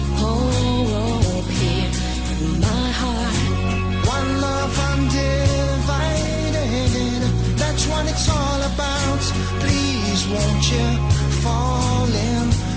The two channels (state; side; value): identical; both; correlation 1.00